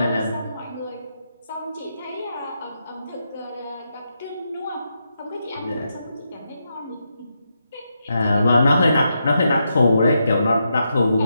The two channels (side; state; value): both; inverted; correlation -0.83